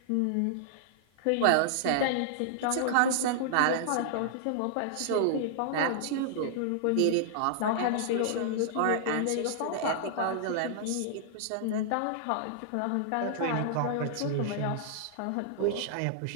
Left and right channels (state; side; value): different; both; correlation -0.01